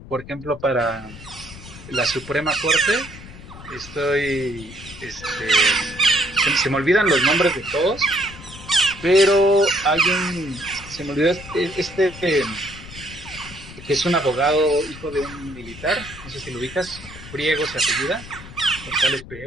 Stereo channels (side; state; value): left; noise; rumble, 16 dB below the sound